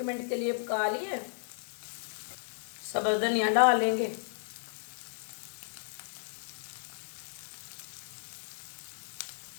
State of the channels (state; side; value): silent; right; digital silence